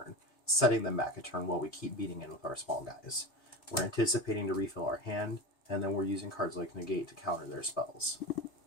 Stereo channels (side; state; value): right; late; 3.3 ms